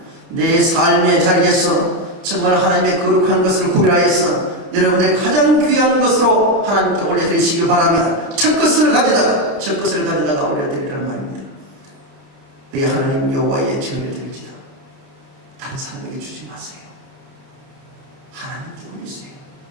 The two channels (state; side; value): late; left; 30 ms